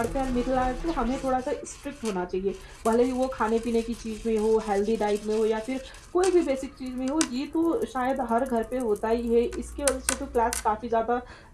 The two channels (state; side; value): identical; both; correlation 1.00